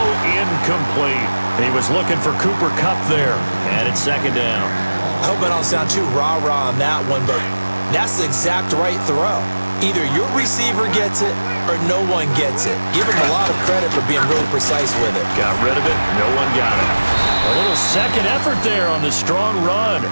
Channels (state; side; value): inverted; both; correlation -1.00